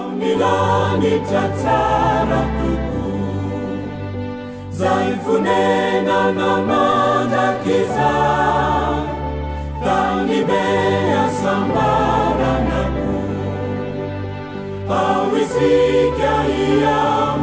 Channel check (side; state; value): both; identical; correlation 1.00